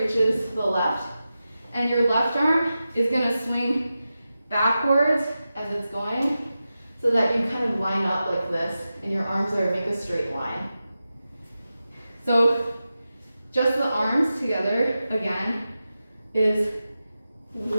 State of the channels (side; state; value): both; inverted; correlation -0.92